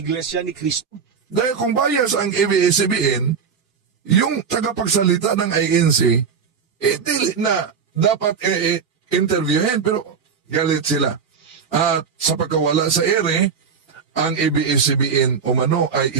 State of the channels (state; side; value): quieter; left; 6.2 dB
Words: ni Cristo. Dahil kung bias ang ABS-CBN, yung tagapagsalita ng INC, dili na dapat interviewin, pero galit sila. At sa pagkawala sa ere, ang ABS-CBN umano ay